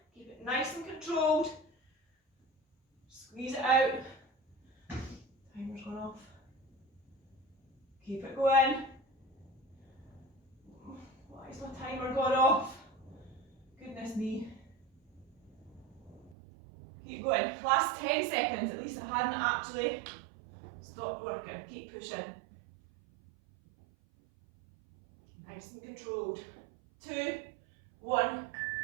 keep it nice and controlled, squeeze it out, timer's gone off, keep it going. Why is my timer gone off? Goodness me. Keep going, last 10 seconds, at least I hadn't actually stopped working. Keep pushing. Nice and controlled. 2, 1,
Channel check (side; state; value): left; drops out; at 16.4 s